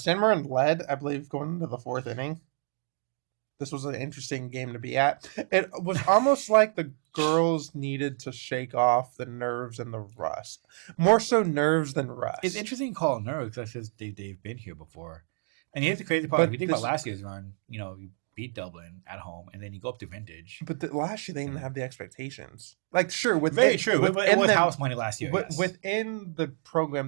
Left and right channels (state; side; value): silent; left; 59 dB below the other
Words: Marin led, I believe, going into the 4th inning. This was an interesting game to be at. It was almost like the girls needed to shake off the nerves and the rust. More so nerves than rust. It's interesting to call it nerves because they've been here before. And here's the crazy part. If you think about last year's run, you beat Dublin at home, and then you go up to Vintage. But last year, they didn't have the expectations. Like, sure. Very true. It was house money last year. Yes. Within the